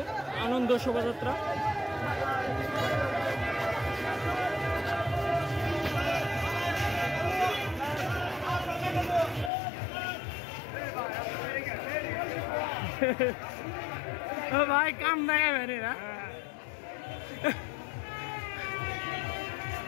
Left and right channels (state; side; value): drops out; right; at 9.5 s